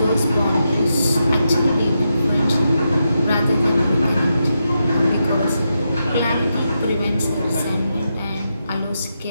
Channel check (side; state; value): both; inverted; correlation -0.85